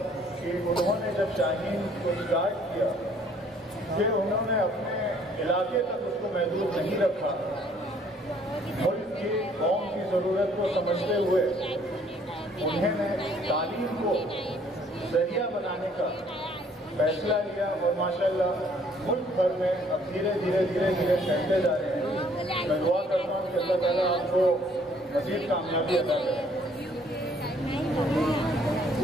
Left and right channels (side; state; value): both; normal; correlation 0.61